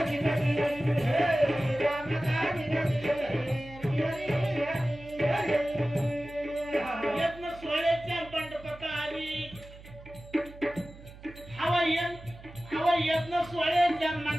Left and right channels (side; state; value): right; noise; hum, 18 dB below the sound